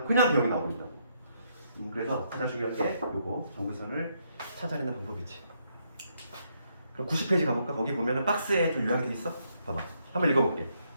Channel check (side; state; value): both; inverted; correlation -0.75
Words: 개형이 나오는다고. 그래서 가장 중요한 게 요거 정근선을 찾아내는 방법이지. 그럼 90페이지 가볼까? 거기 보면은 박스에 좀 요약이 돼 있어. 봐봐. 한번 읽어볼게.